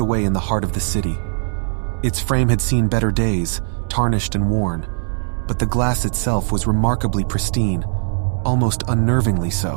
away in the heart of the city. Its frame had seen better days, tarnished and worn, but the glass itself was remarkably pristine, almost unnervingly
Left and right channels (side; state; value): left; silent; 63 dB below the other